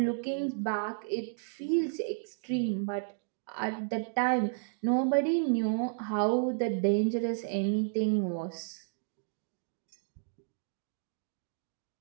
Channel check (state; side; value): silent; left; digital silence